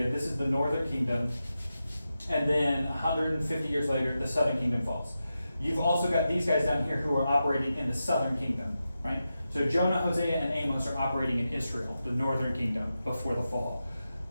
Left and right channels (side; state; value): both; inverted; correlation -0.90